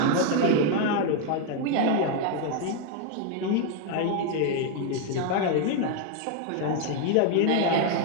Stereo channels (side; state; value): both; different; correlation 0.01